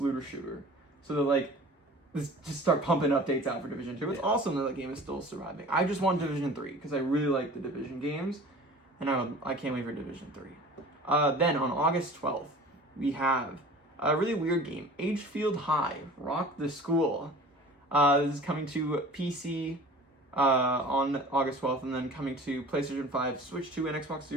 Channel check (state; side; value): normal; both; correlation 0.43